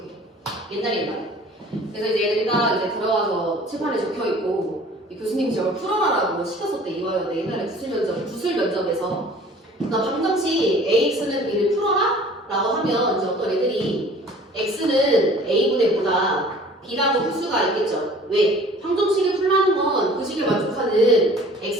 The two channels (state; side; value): normal; both; correlation 0.49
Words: 옛날에. 그래서 이제 애들이가 이제 들어와서 칠판에 적혀 있고 교수님이 저걸 풀어라라고 시켰었대. 이화여대 옛날에 구술 면접에서. 그러니까 방정식 AX는 B를 풀어라 라고 하면 이제 어떤 애들이 X는 A분의 뭐다 B라고 풀 수가 있겠죠. 왜? 방정식을 풀라는 건 그 식을 만족하는